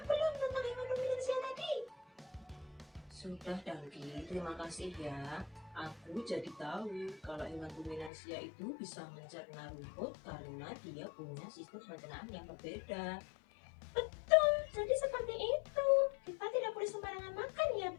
belum tentang hewan ruminansia tadi? Sudah, Danggi. Terima kasih ya. Aku jadi tahu kalau hewan ruminansia itu bisa mencerna rumput karena dia punya sistem pencernaan yang berbeda. Betul, jadi seperti itu. Kita tidak boleh sembarangan makan ya,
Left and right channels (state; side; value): drops out; right; at 8.1 s